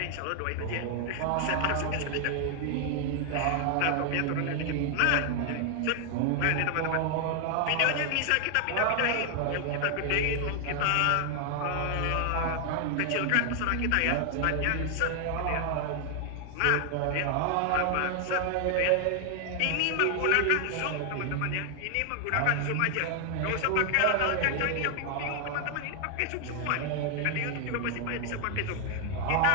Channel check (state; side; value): different; both; correlation 0.00